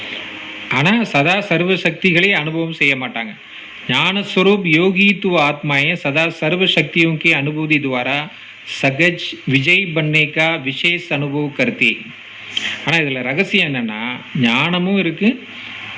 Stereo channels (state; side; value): identical; both; correlation 1.00